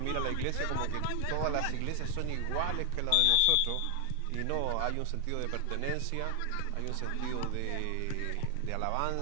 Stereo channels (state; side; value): different; both; correlation 0.00